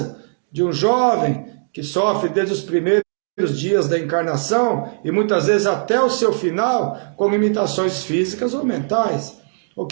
de um jovem que sofre desde os primeiros dias da encarnação e muitas vezes até o seu final com limitações físicas ou mentais, ou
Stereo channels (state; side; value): silent; left; digital silence